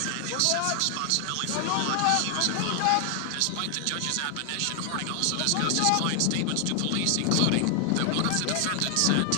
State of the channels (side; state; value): both; different; correlation 0.00